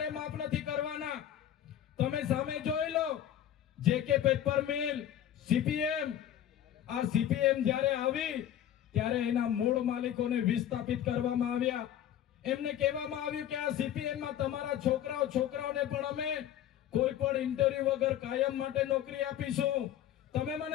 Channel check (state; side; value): quieter; right; 11.0 dB